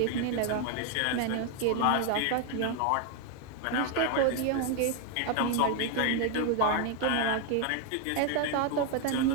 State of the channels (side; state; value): both; different; correlation 0.01